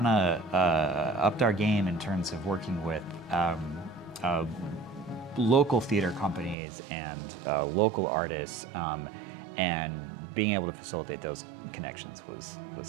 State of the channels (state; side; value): drops out; left; at 6.6 s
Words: of upped our game in terms of working with local theater companies and local artists, and being able to facilitate those connections